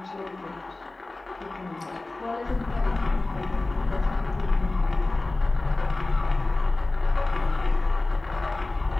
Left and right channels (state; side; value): quieter; right; 3.1 dB